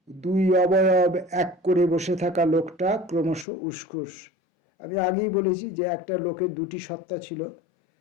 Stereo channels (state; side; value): drops out; right; at 3.5 s